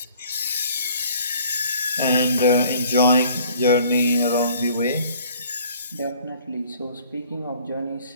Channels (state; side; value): inverted; both; correlation -0.55